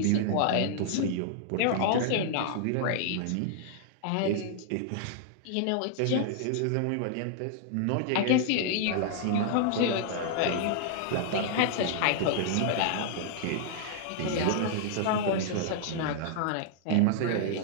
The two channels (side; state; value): both; different; correlation -0.01